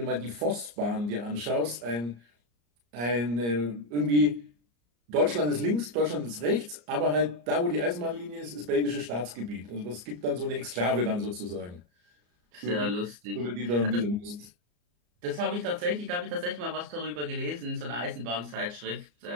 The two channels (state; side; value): late; left; 34 ms